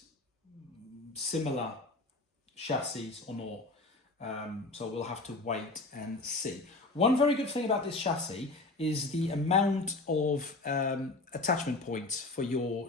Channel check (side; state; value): right; quieter; 3.1 dB